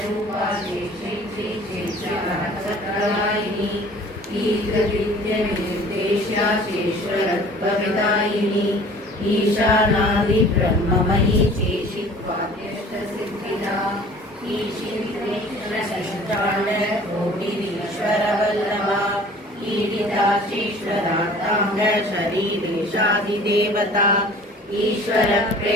चेक्षित्रिचेक्षिणचक्रदायिनी ईकृविद्यनिर्देश्या चेश्वरत्वविदायिनी ईशानादिब्रह्ममयी चेशित्वाद्यष्टसिद्धिदा ईशित्रेश्वरशिष्टाण्डकोटिरीश्वरवल्लभा ईडिता चेश्वरार्ताङ्ग शरीरेशादिदेवता ईश्वर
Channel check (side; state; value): both; normal; correlation 0.48